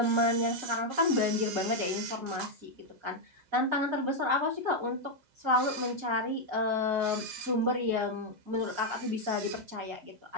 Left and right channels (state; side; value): late; left; 6.8 ms